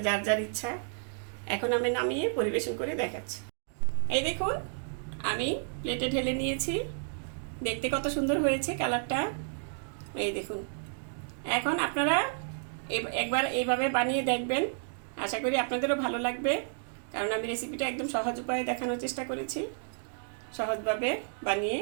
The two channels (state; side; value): silent; left; digital silence